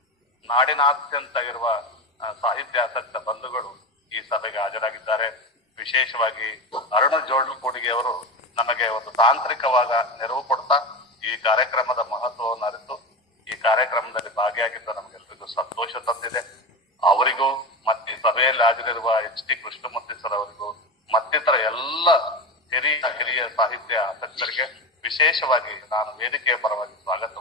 ನಾಡಿನಾದ್ಯಂತ ಇರುವ ಸಾಹಿತ್ಯಾಸಕ್ತ ಬಂಧುಗಳು ಈ ಸಭೆಗೆ ಹಾಜರಾಗಿದ್ದಾರೆ. ವಿಶೇಷವಾಗಿ ಅರುಣ ಜೋಡ್ಲುಕೂಡಿಗೆ ಅವರು ನಮಗೆ ಒಂದು ತಾಂತ್ರಿಕವಾದ ನೆರವು ಕೊಡ್ತಾ ಈ ಕಾರ್ಯಕ್ರಮದ ಮಹತ್ವವನ್ನು ಅರಿತು ಈ ಕಾರ್ಯಕ್ರಮದಲ್ಲಿ ಭಾಗಿಯಾಗಿದ್ದ ನಮಗೆಲ್ಲರಿಗೂ ಸಂತೋಷ ತಂದಿದೆ. ಅವರಿಗೂ ಮತ್ತೆ ಸಭೆಯಲ್ಲಿ ಹಾಜರಿರುವ ಎಚ್ ಟಿ ಕೃಷ್ಣಮೂರ್ತಿ ಸರ್ ಅವರಿಗೂ ಮತ್ತಿತರ ಎಲ್ಲ ಹಿರಿಯ ಸಾಹಿತ್ಯ ಆಸಕ್ತರಿಗೆ ವಿಶೇಷವಾಗಿ ನಾನು ವೇದಿಕೆಯ ಪರವಾಗಿ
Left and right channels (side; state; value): both; normal; correlation 0.21